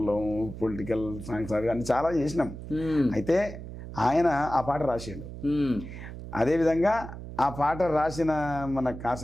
పొలిటికల్ సాంగ్స్ అవి అన్ని చాలా చేసినాం. అయితే ఆయన ఆ పాట రాసిండు. అదేవిధంగా ఆ పాట రాసిన మన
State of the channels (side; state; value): right; noise; hum, 11 dB below the sound